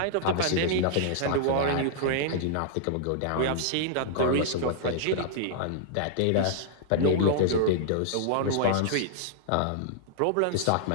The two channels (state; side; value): different; both; correlation -0.01